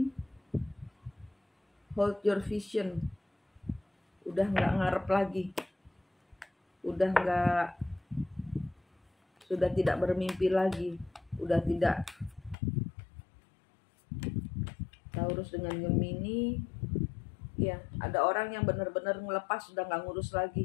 Hold your vision. Udah nggak ngarep lagi. Sudah tidak bermimpi lagi. Udah tidak. Taurus dengan Gemini, ya ada orang yang benar-benar ngelepas, sudah nggak ngurus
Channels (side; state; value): right; drops out; at 12.6 s